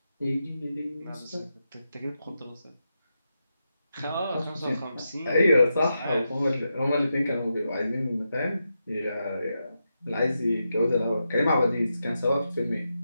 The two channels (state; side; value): inverted; both; correlation -0.87